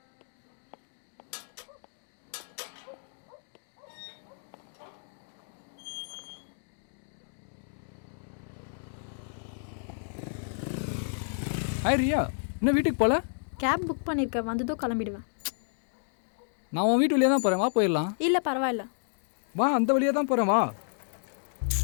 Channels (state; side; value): silent; right; digital silence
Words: ஹாய் ரியா, இன்னும் வீட்டுக்கு போகல? கேப் புக் பண்ணியிருக்கேன், வந்ததும் கிளம்பிடுவேன். நான் உன் வீட்டு வழியாக தான் போகிறேன், வா போயிடலாம். இல்லை பரவாயில்ல, வா, அந்த வழியாக தான் போகிறேன், வா.